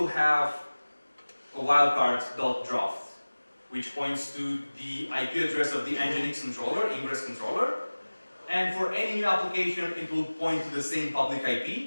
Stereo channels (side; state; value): both; inverted; correlation -1.00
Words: have a wildcard.draft, which points to the IP address of the Nginx controller, ingress controller. And for any new application, it will point to the same public